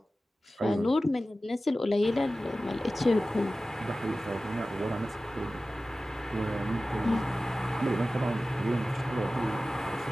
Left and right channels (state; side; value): normal; both; correlation 0.96